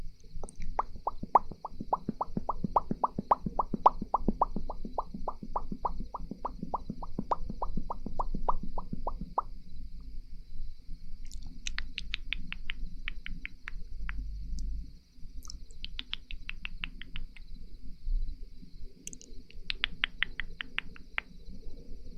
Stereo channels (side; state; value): both; identical; correlation 1.00